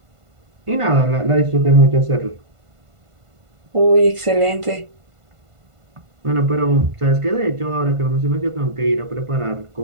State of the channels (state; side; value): late; left; 1.5 ms